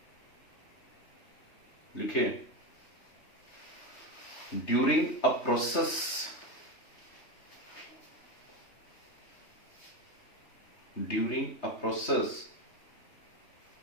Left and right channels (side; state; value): right; late; 3.3 ms